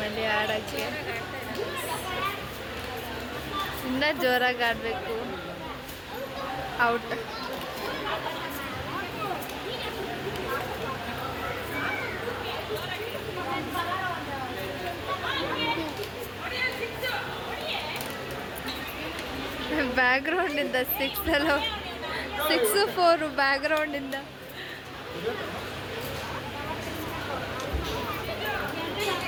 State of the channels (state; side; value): identical; both; correlation 1.00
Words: ಆಡೋಕ್ಕೆ. ಇನ್ನೂ ಜೋರಾಗಿ ಆಡಬೇಕು. ಔಟ್. ಬ್ಯಾಕ್ಗ್ರೌಂಡಿಂದ 6-4 ಬ್ಯಾಕ್ಗ್ರೌಂಡಿಂದ.